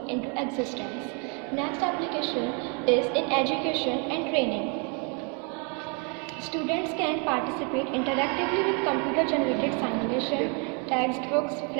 into existence. Next application is in education and training. Students can participate interactively with computer-generated simulation, textbooks,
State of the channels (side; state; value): left; quieter; 36.2 dB